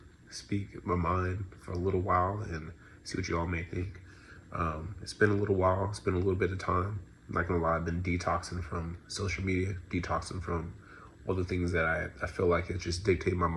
speak my mind for a little while and see what you all may think. It's been a little while, it's been a little bit of time. I'm not gonna lie, I've been detoxing from social media, detoxing from all the things that I feel like it just dictate my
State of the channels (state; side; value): identical; both; correlation 1.00